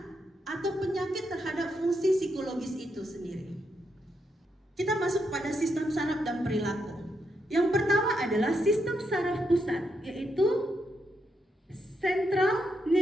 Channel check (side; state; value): both; normal; correlation 0.81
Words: atau penyakit terhadap fungsi psikologis itu sendiri. Kita masuk pada sistem saraf dan perilaku. Yang pertama adalah sistem saraf pusat, yaitu central